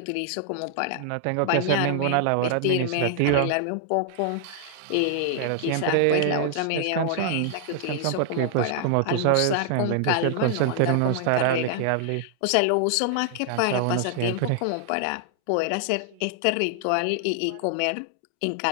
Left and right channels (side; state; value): both; different; correlation 0.00